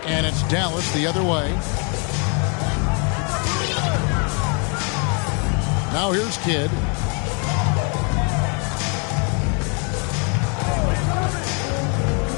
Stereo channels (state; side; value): quieter; right; 36.8 dB